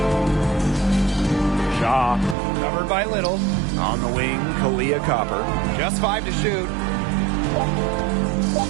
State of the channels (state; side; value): drops out; left; at 2.4 s